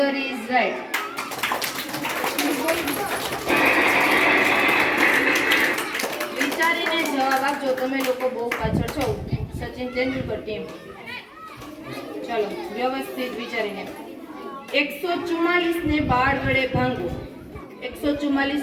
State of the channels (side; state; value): both; identical; correlation 1.00